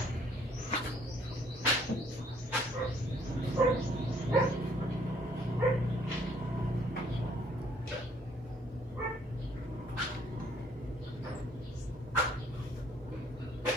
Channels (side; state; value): both; normal; correlation 0.63